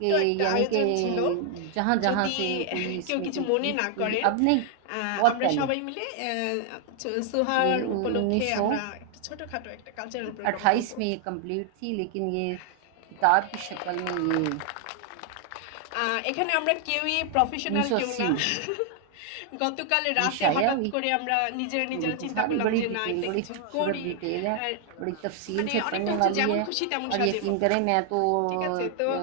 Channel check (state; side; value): different; both; correlation 0.00